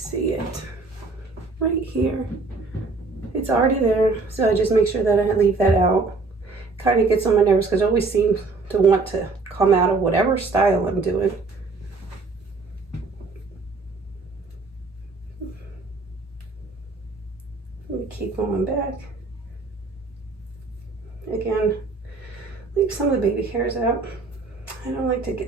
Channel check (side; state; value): left; quieter; 3.8 dB